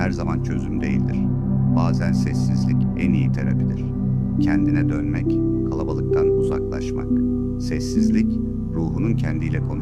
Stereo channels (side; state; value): both; identical; correlation 1.00